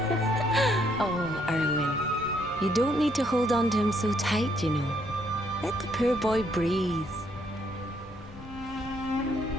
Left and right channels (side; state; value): both; normal; correlation 0.71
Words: Oh, Erwin. You don't need to hold on to him so tight, you know. Let the poor boy breathe.